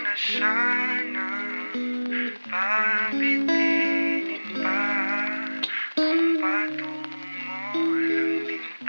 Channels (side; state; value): both; inverted; correlation -1.00